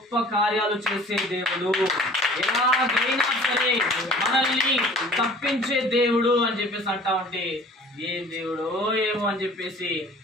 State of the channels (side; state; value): both; normal; correlation 0.48